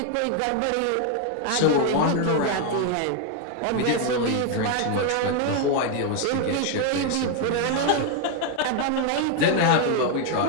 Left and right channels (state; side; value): different; both; correlation 0.01